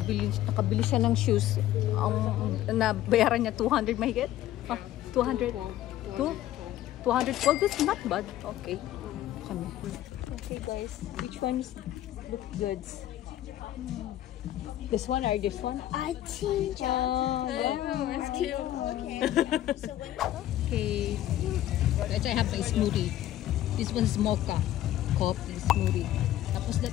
siya ng shoes. Ang nabayaran niya 200 mahigit? 200? 212? That's not bad. Okay. Okay guys, which ones look good? This one or this one? I think it's cute. Okay. Okay. I have my smoothie. This one's mocha. Coffee smoothie. Tapos that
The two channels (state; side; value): quieter; right; 13.3 dB